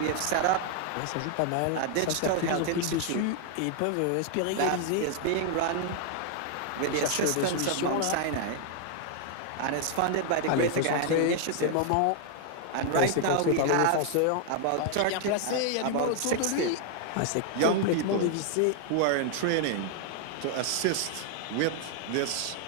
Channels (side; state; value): both; different; correlation 0.00